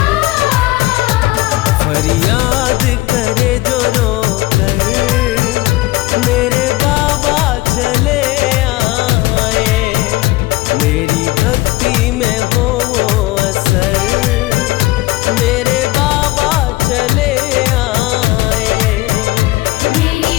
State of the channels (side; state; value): right; quieter; 19.4 dB